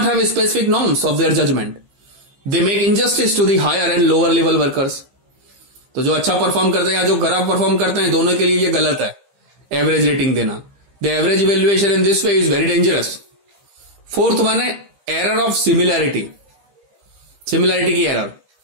have specific norms of their judgment. They make injustice to the higher and lower level workers. तो जो अच्छा परफॉर्म करते हैं या जो खराब परफॉर्म करते हैं, दोनों के लिए ये गलत है एवरेज रेटिंग देना। The average evaluation in this way is very dangerous. Fourth one है एरर ऑफ सिमिलैरिटी, सिमिलैरिटी की error.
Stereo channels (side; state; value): left; late; 15 ms